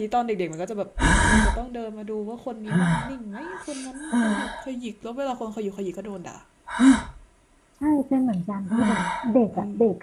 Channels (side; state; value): both; identical; correlation 1.00